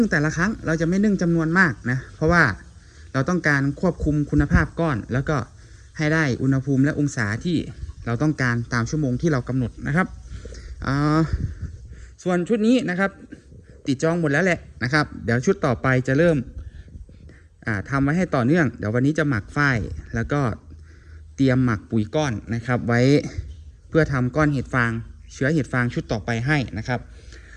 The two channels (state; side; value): identical; both; correlation 1.00